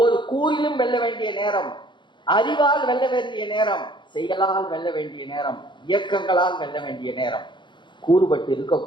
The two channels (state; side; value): late; right; 0.23 ms